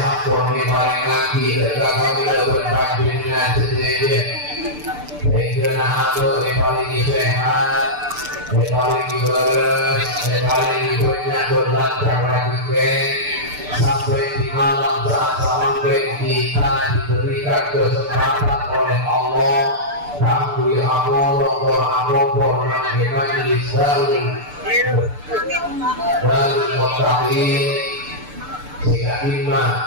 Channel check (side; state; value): left; late; 6.8 ms